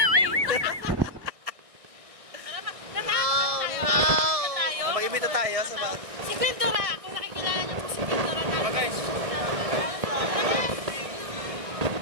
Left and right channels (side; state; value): left; late; 1.6 ms